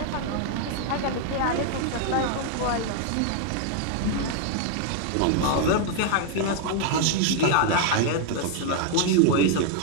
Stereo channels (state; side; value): different; both; correlation 0.00